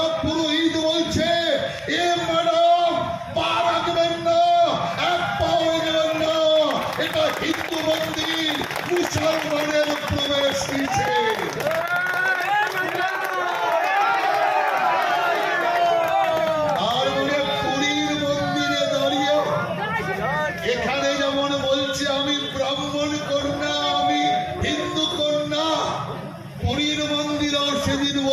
পুরোহিত বলছে, এ ম্যাডাম পা রাখবেন না, এক পাও এগোবেন না, এটা হিন্দু মন্দির, মুসলমানের প্রবেশ নিষেধ। আর বলে পুরীর মন্দিরে দাঁড়িয়ে এখানে যেমন বলছে আমি ব্রাহ্মণ কন্যা, আমি হিন্দু কন্যা, পুরীর মন্দিরেও সেদিন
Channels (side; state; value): both; identical; correlation 1.00